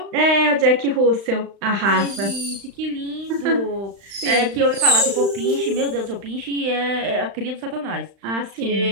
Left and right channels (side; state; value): left; late; 35 ms